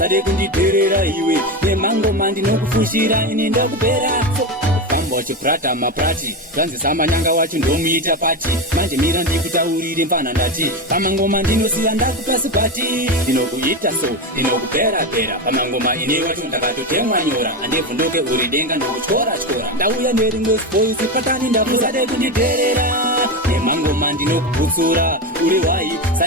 kunditerera iwe nemangoma ndinokufushira ini ndokupera famba wachiprata maprati zvanzisa manyanga wacho ndomuita pati manje mira ndikutaurire mpana ndati pamangoma ndinosiya ndakupasi pati ndinokuita so ndinokupera-pera pamangoma ine wacho ndakatotemwa nyora handevhunduke uri denga ndokutyora ndauya nerimwe spoisi patani ndapusade kunditerera nemangoma ndinokubutsura uri wai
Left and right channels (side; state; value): both; normal; correlation 0.16